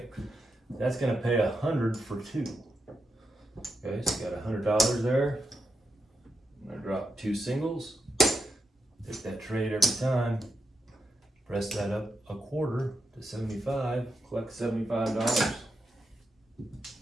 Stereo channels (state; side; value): normal; both; correlation 0.85